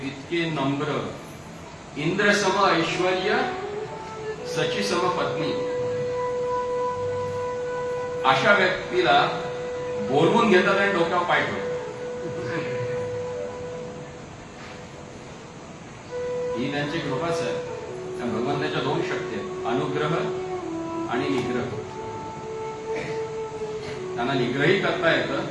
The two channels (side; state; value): both; identical; correlation 1.00